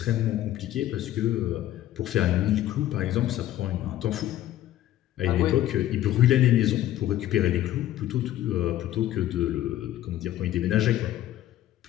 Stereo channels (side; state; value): right; quieter; 13.4 dB